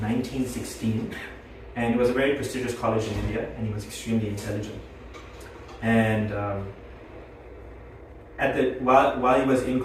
1916. And it was a very prestigious college in India, and he was extremely intelligent. And while he was in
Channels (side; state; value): both; identical; correlation 1.00